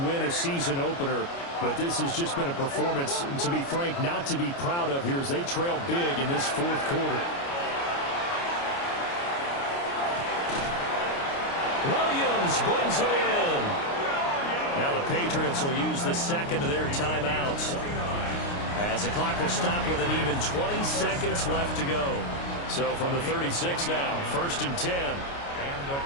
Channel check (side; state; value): right; late; 29 ms